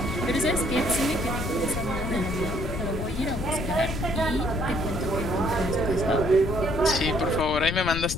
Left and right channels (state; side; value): noise; left; rumble, 4 dB below the sound